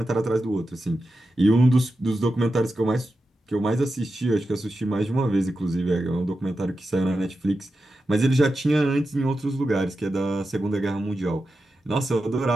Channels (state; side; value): normal; both; correlation 0.90